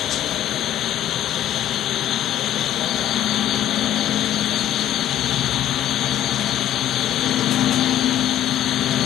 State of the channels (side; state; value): right; quieter; 12.1 dB